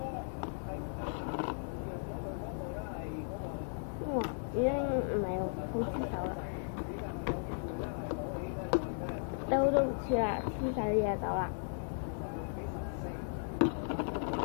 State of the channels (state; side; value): silent; right; digital silence